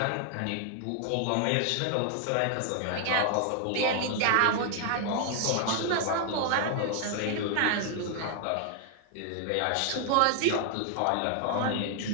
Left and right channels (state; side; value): different; both; correlation 0.00